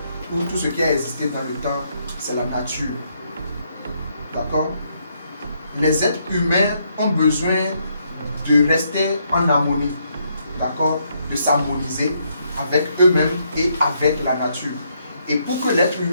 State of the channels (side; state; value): both; inverted; correlation -0.74